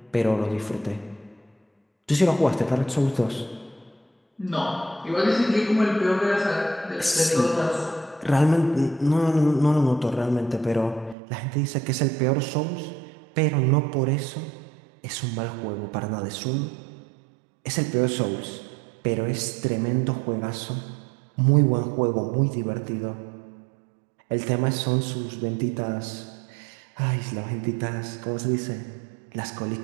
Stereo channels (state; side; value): drops out; left; at 11.2 s